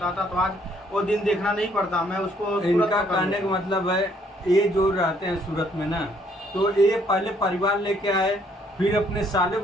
तो आज वो दिन देखना नहीं पड़ता, मैं उसको इनका कहने का मतलब है, ये जो रहते हैं सूरत में ना, तो ये पहले परिवार लेके आए, फिर अपने साले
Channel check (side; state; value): both; normal; correlation 0.66